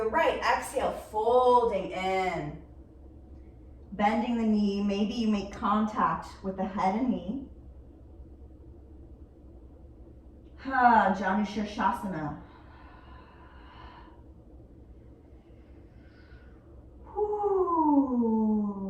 right. Exhale, folding in. Bending the knee. Maybe you make contact with the head and knee. Janushirshasana.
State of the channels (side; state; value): both; identical; correlation 1.00